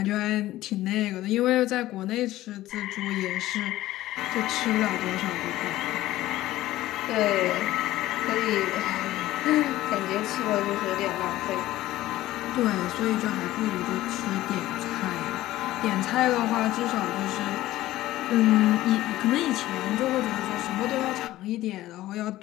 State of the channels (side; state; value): right; quieter; 15.6 dB